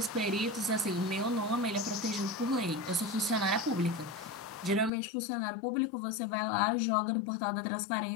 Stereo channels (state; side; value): drops out; right; at 4.9 s